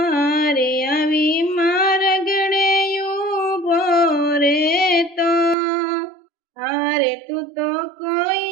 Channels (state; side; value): drops out; left; at 5.6 s